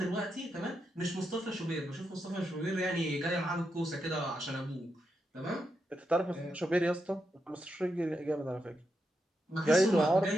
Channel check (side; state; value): both; normal; correlation 0.84